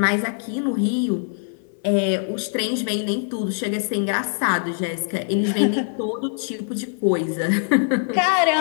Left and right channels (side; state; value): right; silent; 57 dB below the other